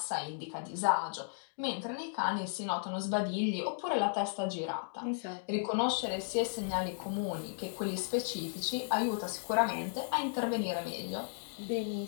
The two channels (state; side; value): silent; right; digital silence